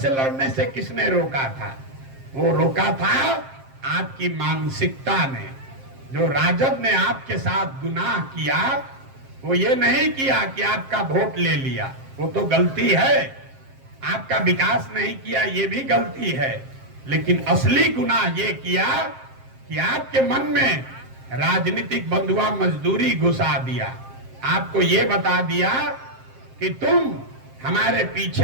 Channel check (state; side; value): late; left; 7.5 ms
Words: लड़ने से किसने रोका था? वो रोका था आपकी मानसिकता ने। जो राजद ने आपके साथ गुनाह किया वो ये नहीं किया कि आपका वोट ले लिया, वो तो गलती है। आपका विकास नहीं किया, ये भी गलती है। लेकिन असली गुनाह ये किया कि आपके मन में राजनीतिक बंधुआ मजदूरी घुसा दिया। आपको ये बता दिया कि तुम हमारे